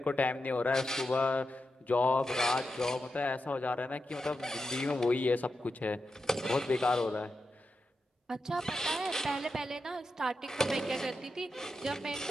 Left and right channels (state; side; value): normal; both; correlation 0.88